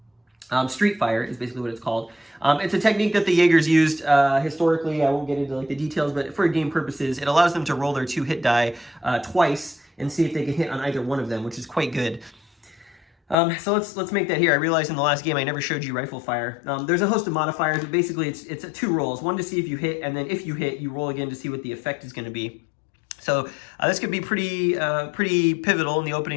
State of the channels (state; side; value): drops out; right; at 13.4 s